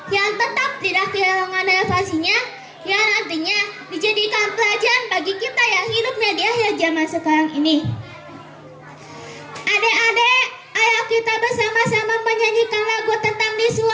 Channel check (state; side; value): identical; both; correlation 1.00